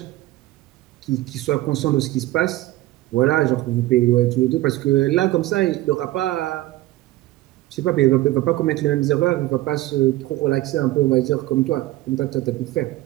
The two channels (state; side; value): quieter; left; 17.2 dB